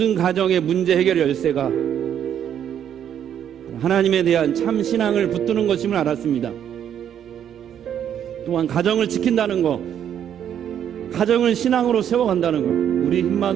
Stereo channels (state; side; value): quieter; left; 9.5 dB